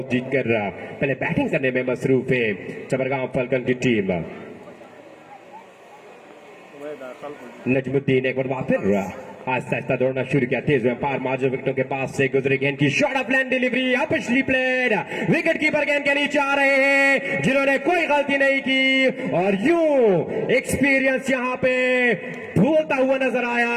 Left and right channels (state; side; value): identical; both; correlation 1.00